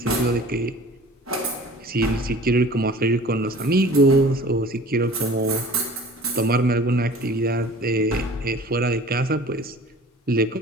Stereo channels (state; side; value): normal; both; correlation 0.45